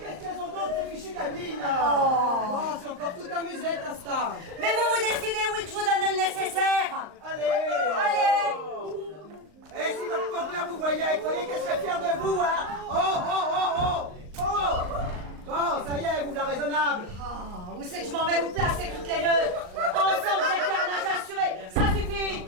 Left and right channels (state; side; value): late; left; 39 ms